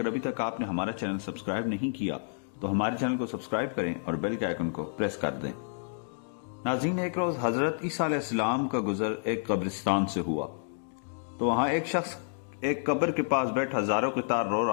ابھی تک آپ نے ہمارا چینل سبسکرائب نہیں کیا تو ہمارے چینل کو سبسکرائب کریں اور بیل کے آئیکن کو پریس کر دیں۔ ناظرین، ایک روز حضرت عیسیٰ علیہ السلام کا گزر ایک قبرستان سے ہوا تو وہاں ایک شخص ایک قبر کے پاس بیٹھا ہزاروں قطار رو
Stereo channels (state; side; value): silent; right; digital silence